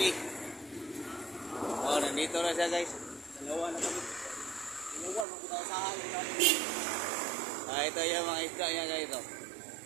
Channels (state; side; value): drops out; left; at 5.2 s